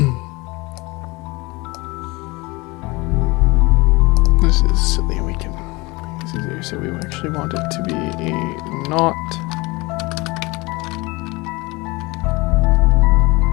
This is silly. We can make this easier. So we actually want it to be a not.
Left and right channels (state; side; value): quieter; right; 24.0 dB